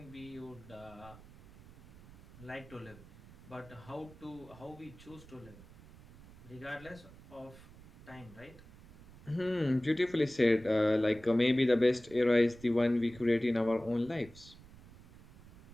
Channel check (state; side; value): noise; right; rumble, 21 dB below the sound